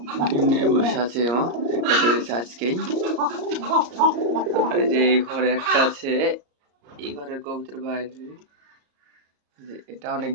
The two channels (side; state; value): left; late; 34 ms